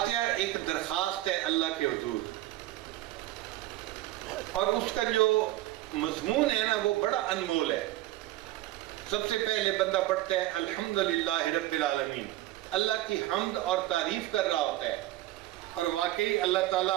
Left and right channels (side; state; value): left; quieter; 16.0 dB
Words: ایک درخواست ہے اللہ کے حضور، اور اس کا جو مضمون ہے نا وہ بڑا انمول ہے۔ سب سے پہلے بندہ پڑھتا ہے الحمدللہ رب العالمین، اللہ کی حمد اور تعریف کر رہا ہوتا ہے، اور واقعی اللہ